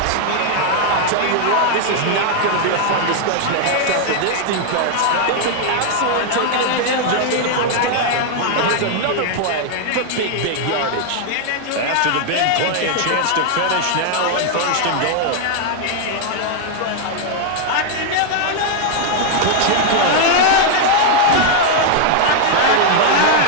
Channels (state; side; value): different; both; correlation 0.00